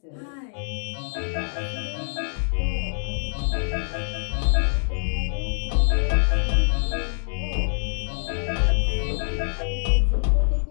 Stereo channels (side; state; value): right; silent; digital silence